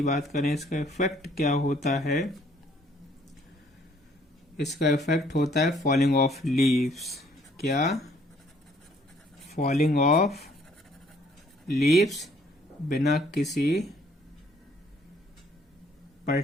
बात करें, इसका इफेक्ट क्या होता है, इसका इफेक्ट होता है फॉलिंग ऑफ लीव्स। क्या, फॉलिंग ऑफ लीव्स, बिना किसी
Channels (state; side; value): normal; both; correlation 0.62